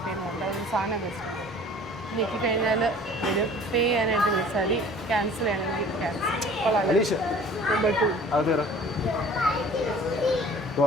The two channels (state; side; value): normal; both; correlation 0.48